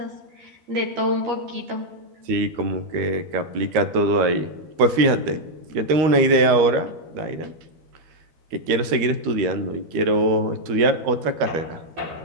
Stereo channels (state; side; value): late; left; 13 ms